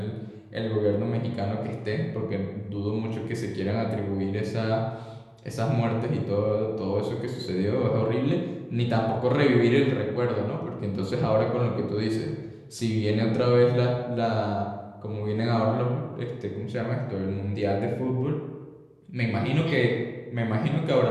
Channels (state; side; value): identical; both; correlation 1.00